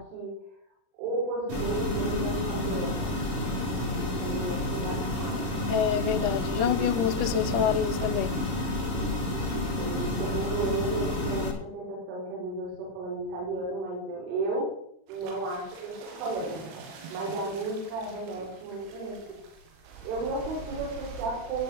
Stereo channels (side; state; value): left; late; 31 ms